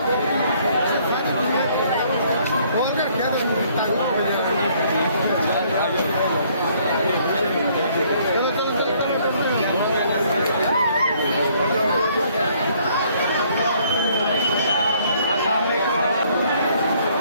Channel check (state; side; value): inverted; both; correlation -0.64